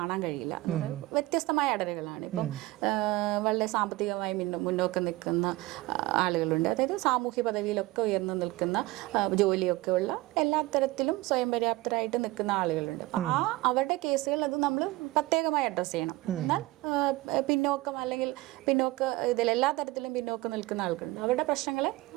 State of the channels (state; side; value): quieter; left; 19.8 dB